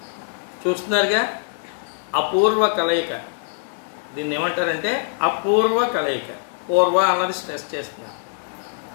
చూస్తున్నారుగా అపూర్వ కలయిక. దీన్ని ఏమంటారంటే అపూర్వ కలయిక. పూర్వ అన్నది స్ట్రెస్ చేస్తున్నాను.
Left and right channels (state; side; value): silent; right; 64 dB below the other